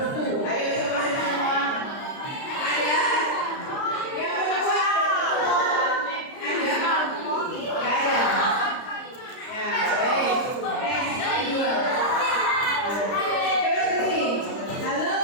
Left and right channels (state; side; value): late; right; 30 ms